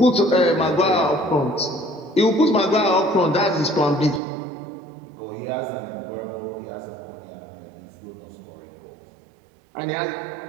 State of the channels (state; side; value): drops out; left; at 4.2 s